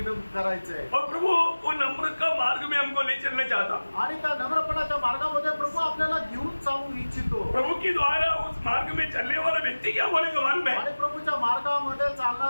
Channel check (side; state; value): both; inverted; correlation -1.00